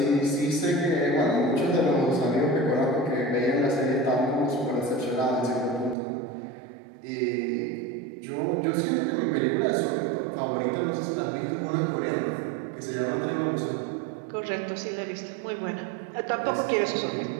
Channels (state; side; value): drops out; left; at 6.0 s